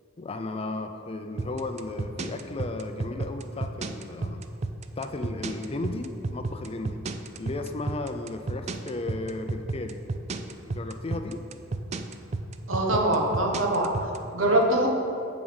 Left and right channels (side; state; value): both; normal; correlation 0.24